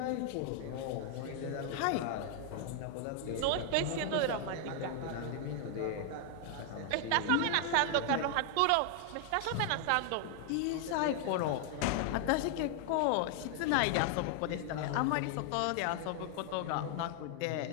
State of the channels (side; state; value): both; different; correlation 0.00